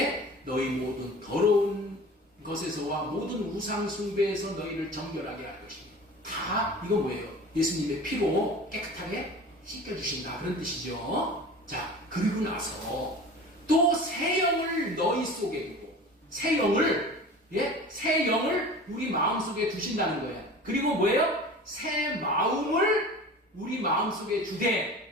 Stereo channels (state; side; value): normal; both; correlation 0.38